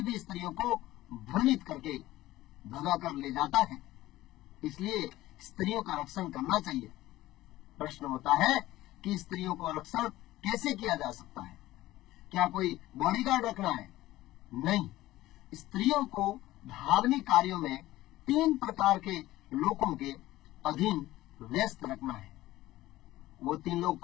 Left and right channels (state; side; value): quieter; right; 16.3 dB